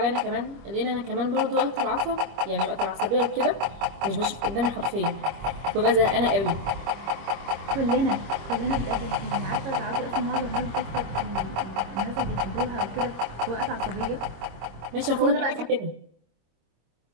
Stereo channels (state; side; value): late; left; 25 ms